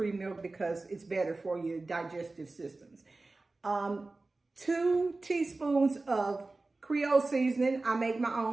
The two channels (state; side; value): quieter; left; 3.3 dB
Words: milk because it's better for your digestive systems. 2 teaspoons of Creole seasoning. I make my